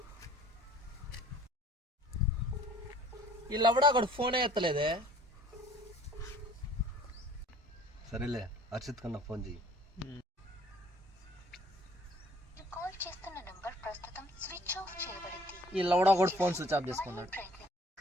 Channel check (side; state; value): both; normal; correlation 0.54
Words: వీళ్ళవడా అక్కడ ఫోనే ఎత్తలేదే. సరేలే, హర్షిత్ కన్నా ఫోన్ చేయి. వీళ్ళవడా కూడా ఫోన్ స్విచ్ ఆఫ్ చేసుకున్నాడు.